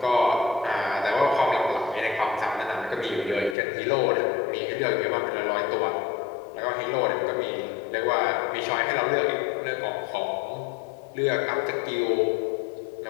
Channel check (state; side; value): drops out; right; at 3.6 s